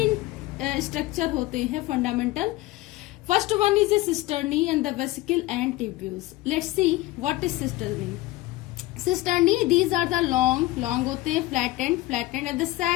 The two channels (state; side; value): quieter; right; 18.3 dB